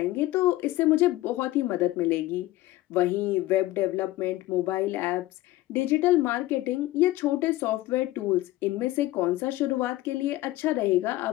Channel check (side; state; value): right; quieter; 16.8 dB